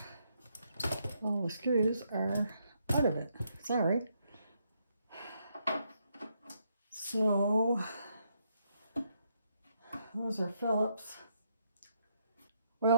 the screws are out of it. Sorry. So those are Phillips.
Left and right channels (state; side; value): inverted; both; correlation -0.76